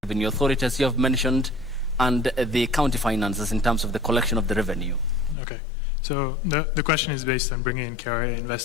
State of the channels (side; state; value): right; drops out; at 5.4 s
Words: Revenue Authority, as you have mentioned, and the county finances in terms of the collection of the revenue? Okay. So the question is based on bringing in KRA